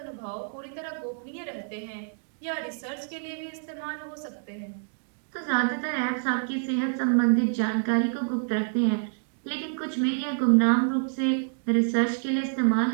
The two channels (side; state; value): left; silent; digital silence